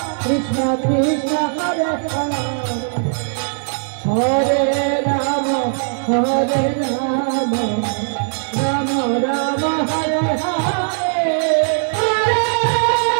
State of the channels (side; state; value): left; silent; 67 dB below the other